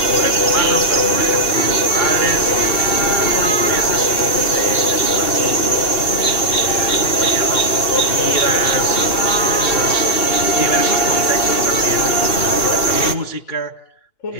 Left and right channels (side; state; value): right; late; 2.7 ms